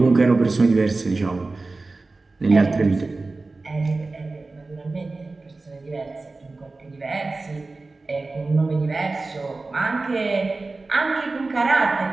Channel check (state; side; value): quieter; left; 3.5 dB